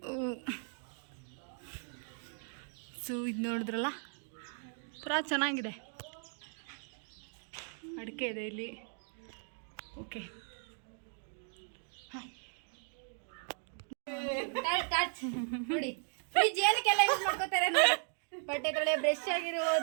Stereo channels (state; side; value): silent; left; 53 dB below the other